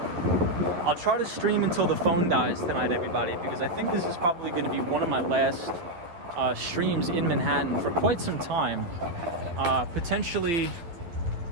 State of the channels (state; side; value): late; left; 11 ms